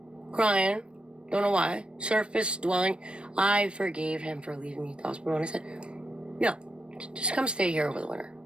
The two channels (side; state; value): left; late; 0.057 ms